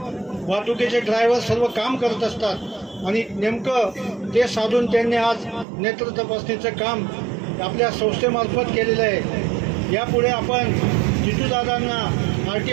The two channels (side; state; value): left; drops out; at 5.7 s